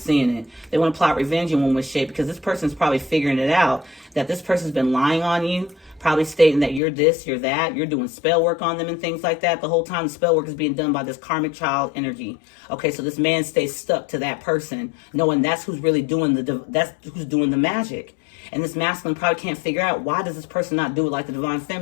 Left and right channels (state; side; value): drops out; right; at 6.8 s